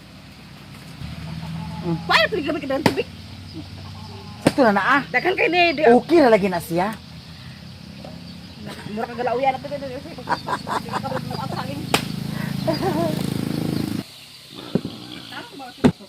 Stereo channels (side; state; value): both; identical; correlation 1.00